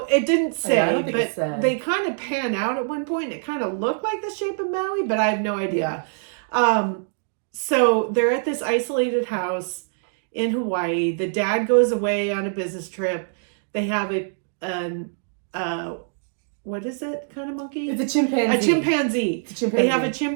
It didn't say, I don't think it said. They kind of pan out at one point. It kind of looked like the shape of Maui, but I have no idea. So they're at this isolated house in Hawaii. The dad goes away on a business trip. They have what is it kind of monkey? It's a chimpanzee. A chimpanzee. It's a chimpanzee. They have a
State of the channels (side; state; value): left; silent; digital silence